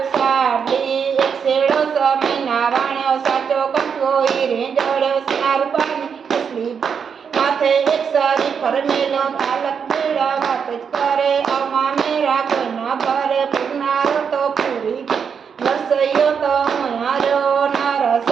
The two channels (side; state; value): left; quieter; 6.7 dB